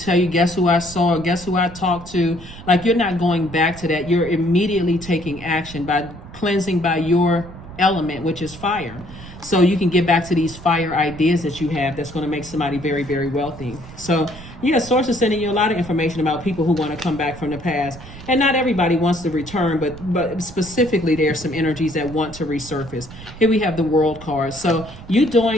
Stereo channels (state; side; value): noise; right; rumble, 16 dB below the sound